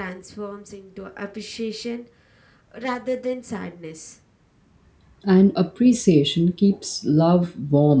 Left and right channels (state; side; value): identical; both; correlation 1.00